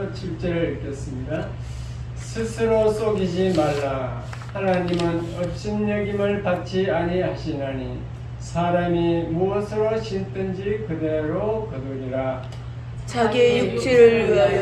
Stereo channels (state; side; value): identical; both; correlation 1.00